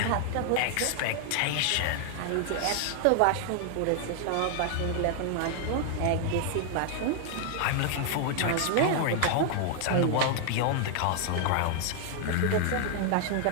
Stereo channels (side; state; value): both; different; correlation 0.00